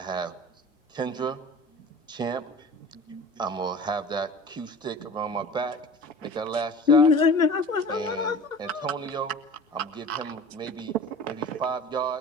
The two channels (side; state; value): both; normal; correlation 0.39